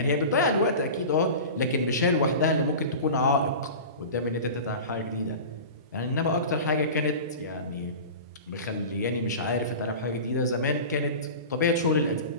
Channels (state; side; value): inverted; both; correlation -0.32